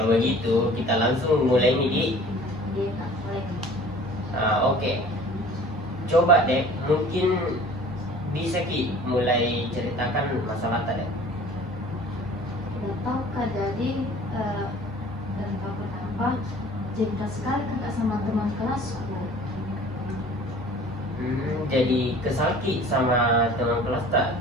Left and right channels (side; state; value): both; normal; correlation 0.47